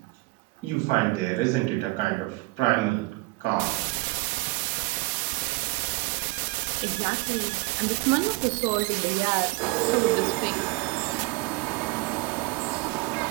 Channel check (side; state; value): left; quieter; 23.9 dB